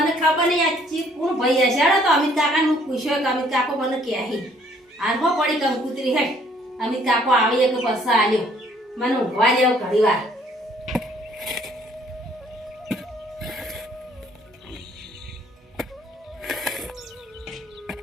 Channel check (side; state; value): both; normal; correlation 0.62